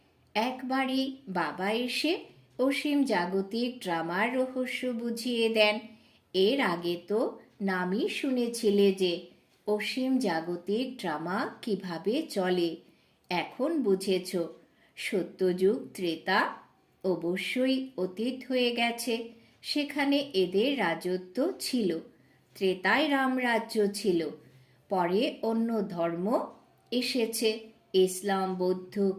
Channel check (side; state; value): both; identical; correlation 1.00